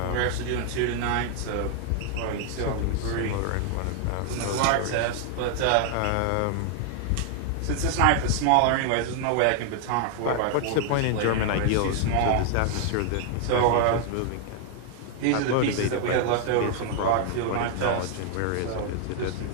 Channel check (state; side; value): different; both; correlation 0.00